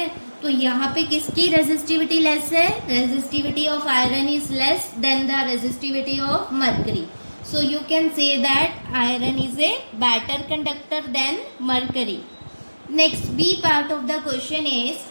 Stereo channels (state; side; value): inverted; both; correlation -1.00